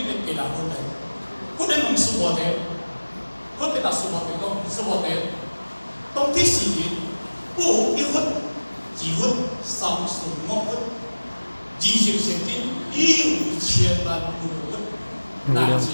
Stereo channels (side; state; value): both; inverted; correlation -1.00